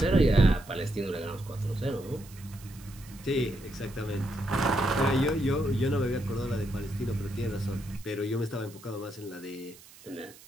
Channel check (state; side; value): noise; right; hiss, 21 dB below the sound